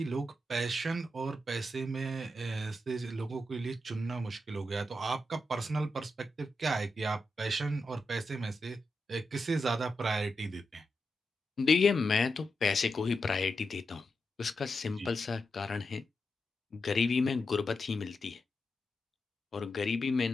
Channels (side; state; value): both; normal; correlation 0.87